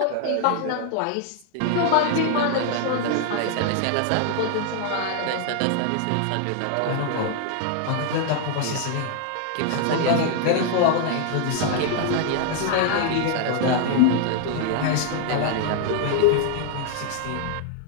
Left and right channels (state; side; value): different; both; correlation 0.00